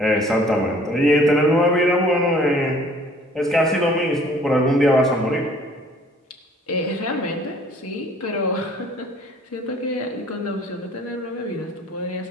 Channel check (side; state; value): both; normal; correlation 0.55